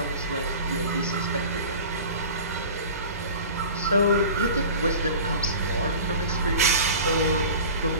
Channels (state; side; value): inverted; both; correlation -0.38